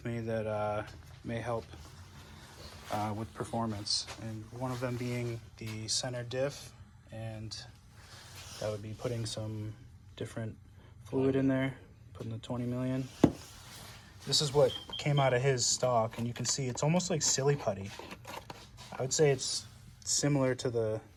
me that may help with performance. And one of them being the center diff, and that would be putting some different fluid in there, putting the 20 million. This is what came out of his stock, and you can see it's almost like silly putty. I would say it's similar to the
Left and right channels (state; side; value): identical; both; correlation 1.00